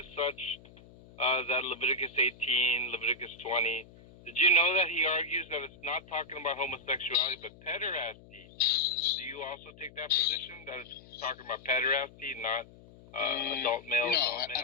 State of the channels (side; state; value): left; noise; hum, 22 dB below the sound